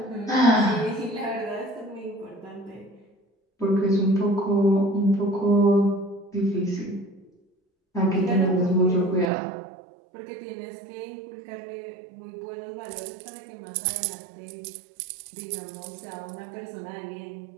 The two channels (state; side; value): drops out; left; at 9.3 s